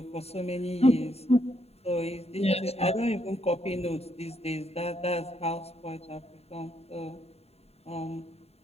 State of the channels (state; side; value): late; right; 0.30 ms